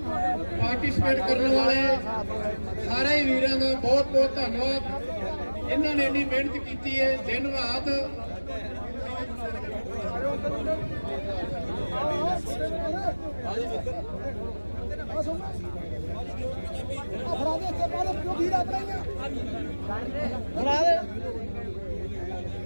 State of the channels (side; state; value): both; inverted; correlation -1.00